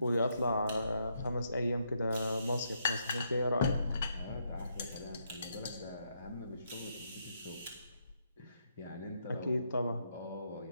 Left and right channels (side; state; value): both; inverted; correlation -0.78